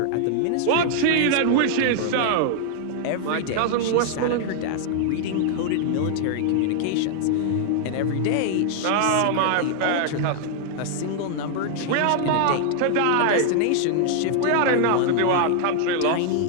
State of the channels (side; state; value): both; different; correlation 0.00